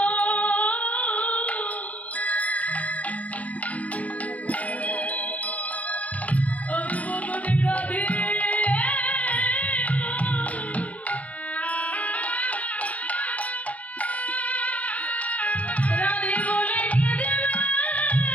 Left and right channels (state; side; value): late; right; 0.070 ms